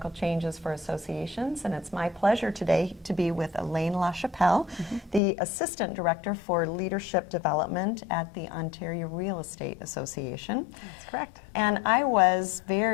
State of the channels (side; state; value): right; drops out; at 5.2 s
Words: Changes for Associations, and it's my pleasure today to be with Elaine La Chappelle, the Assistant Director for Leadership Development at the Ontario Real Estate Association. That's correct. And I was